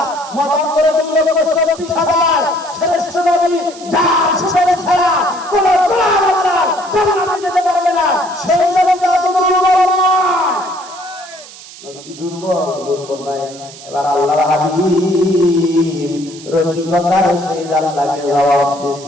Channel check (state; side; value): noise; right; hiss, 18 dB below the sound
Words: মতান্তরে 2,24,000 শ্রেষ্ঠ নবী যার সুপারিশ ছাড়া কোন গোলাম আল্লাহ জান্নাতে যেতে পারবে না, সেই নবী এত দুর্বল নয়। নবী কি দুর্বল নয়। এবার আল্লাহর হাবিব রসিকতার সহিত আল্লাহকে জবাব